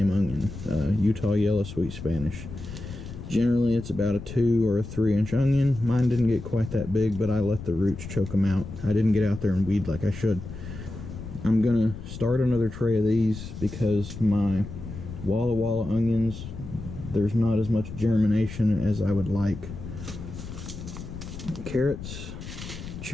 onion. Utah Yellow Sweet Spanish. Generally, it's about a 2 or a 3-inch onion. Mine didn't get quite that big, but I let the roots choke them out. I didn't get out there and weed like I should. I'm gonna start another tray of these because my Walla Walla onions, there's not as much germination as I would like. Carrots,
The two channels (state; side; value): noise; left; rumble, 11 dB below the sound